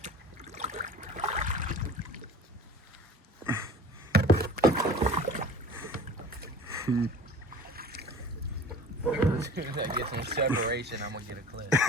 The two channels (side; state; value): both; normal; correlation 0.42